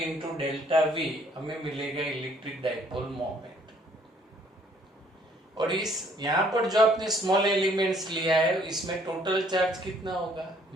डेल्टा V हमें मिलेगा इलेक्ट्रिक डाइपोल मोमेंट। और इस यहाँ पर जो आपने स्मॉल एलिमेंट्स लिया है इसमें टोटल चार्ज कितना होगा,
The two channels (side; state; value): both; normal; correlation 0.62